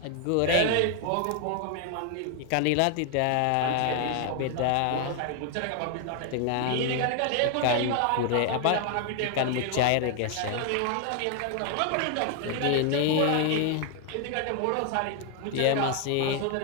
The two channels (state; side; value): different; both; correlation 0.00